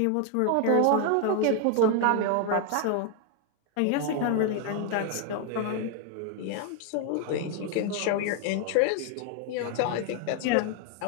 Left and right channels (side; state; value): both; different; correlation 0.00